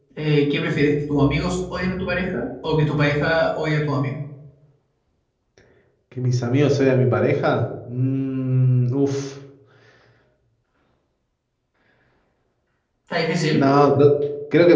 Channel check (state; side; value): identical; both; correlation 1.00